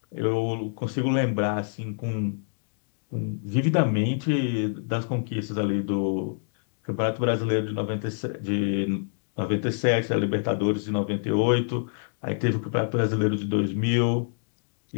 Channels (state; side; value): silent; right; digital silence